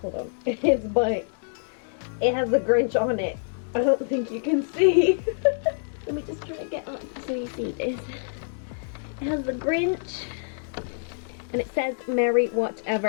hold on, it's by, it has the Grinch on it. I don't think you can see. Let me just try to get up so you see this. It has the Grinch and it says Merry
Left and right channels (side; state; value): right; silent; digital silence